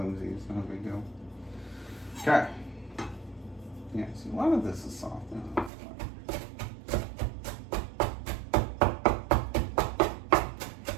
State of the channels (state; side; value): drops out; left; at 5.7 s